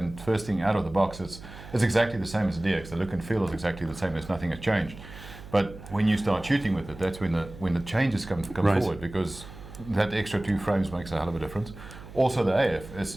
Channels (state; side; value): noise; right; hum, 15 dB below the sound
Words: first thing out of the box, it's exactly the same as the DX. The look and feel is exactly the same. There's nothing has changed. But when you start shooting with it, that's when the changes come forward, because that extra 2 frames makes a hell of a difference. Also the AF